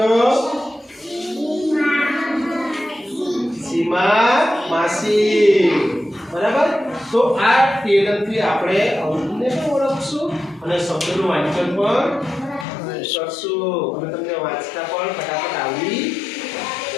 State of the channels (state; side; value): drops out; right; at 12.7 s